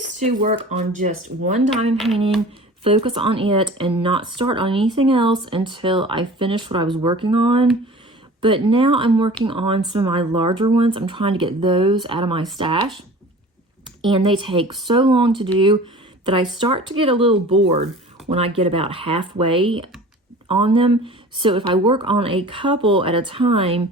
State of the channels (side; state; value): both; normal; correlation 0.42